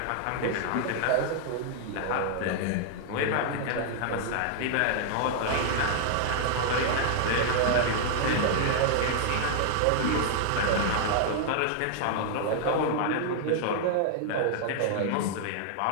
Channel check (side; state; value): both; different; correlation -0.01